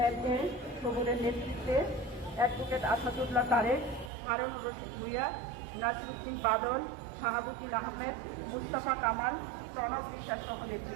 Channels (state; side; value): drops out; left; at 4.1 s